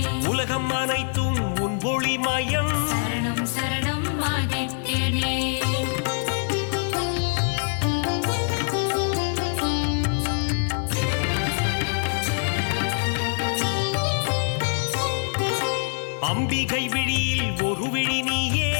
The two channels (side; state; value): right; silent; 62 dB below the other